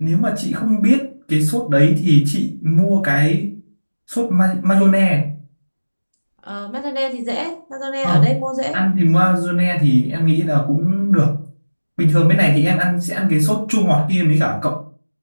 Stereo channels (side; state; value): both; inverted; correlation -1.00